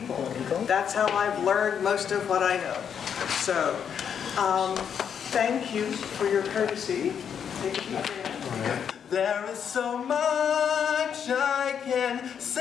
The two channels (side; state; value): right; quieter; 7.8 dB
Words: That's how I've learned most of what I know. So, thank you for your courtesy. Thank you for your There is so much I can